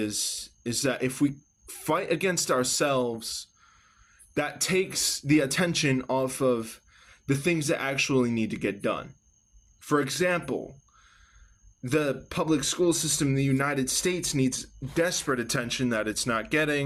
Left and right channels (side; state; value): both; identical; correlation 1.00